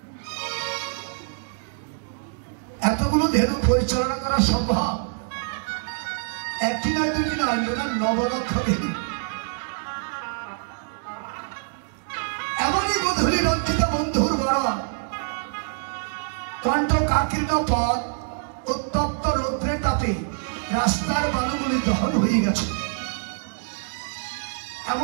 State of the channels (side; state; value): left; silent; digital silence